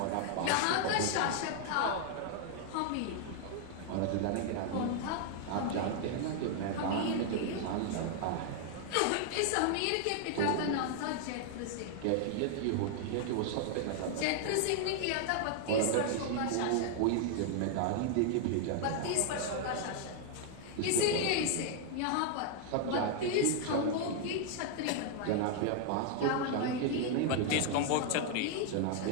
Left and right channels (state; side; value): different; both; correlation 0.00